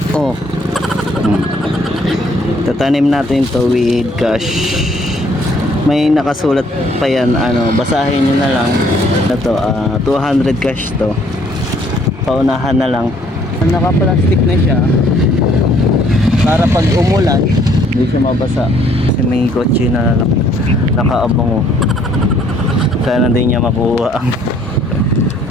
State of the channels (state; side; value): normal; both; correlation 0.63